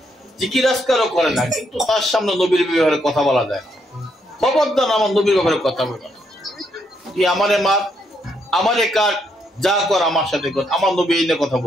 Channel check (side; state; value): both; normal; correlation 0.75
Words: জিকির আজকারও করে না, কিন্তু তার সামনে নবীর ব্যাপারে কথা বলা যায় না। খবরদার আমার নবীর ব্যাপারে কথা বলবে না। তুই আমারে মার, আমারে কাট, যা কর আমার সাথে কর, আমার নবী এই নিয়ে কথা